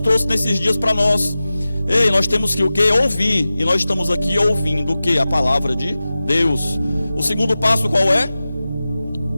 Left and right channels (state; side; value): inverted; both; correlation -0.95